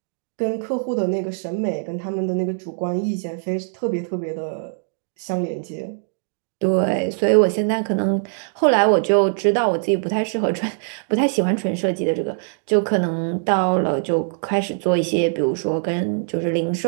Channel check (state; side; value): silent; left; digital silence